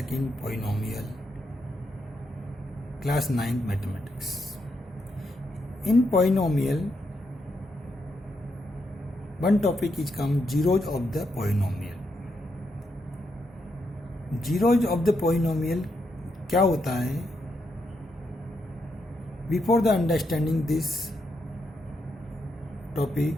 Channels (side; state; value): both; normal; correlation 0.81